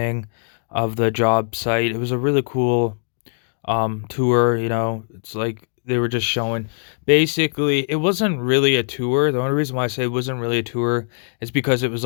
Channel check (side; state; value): right; silent; 65 dB below the other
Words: of the job site. It was a really cool tour, It's like they were just showing basically it wasn't really a tour. The only reason why I say it wasn't really a tour is because it was